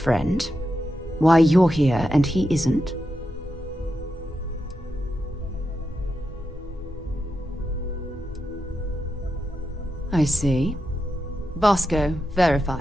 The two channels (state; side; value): normal; both; correlation 0.87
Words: Why you're here and he isn't? I see. Vasco,